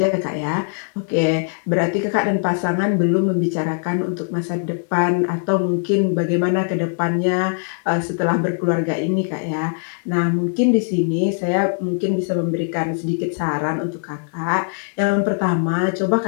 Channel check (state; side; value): silent; right; digital silence